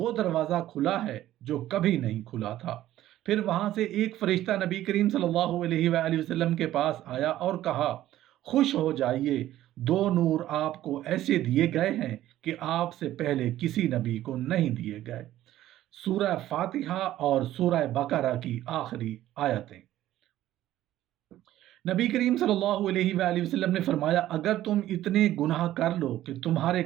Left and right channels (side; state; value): left; quieter; 13.7 dB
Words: دروازہ کھلا ہے جو کبھی نہیں کھلا تھا۔ پھر وہاں سے ایک فرشتہ نبی کریم صلی اللہ علیہ وآلہ وسلم کے پاس آیا اور کہا، خوش ہو جائیے، 2 نور آپ کو ایسے دیے گئے ہیں کہ آپ سے پہلے کسی نبی کو نہیں دیے گئے۔ سورہ فاتحہ اور سورہ بقرہ کی آخری آیتیں۔ نبی کریم صلی اللہ علیہ وآلہ وسلم نے فرمایا، اگر تم اتنے گناہ کر لو کہ تمہارے